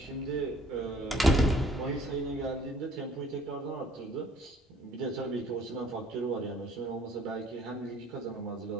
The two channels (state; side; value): normal; both; correlation 0.57